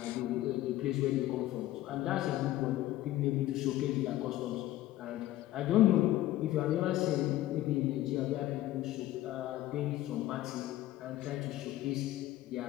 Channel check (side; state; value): right; quieter; 15.0 dB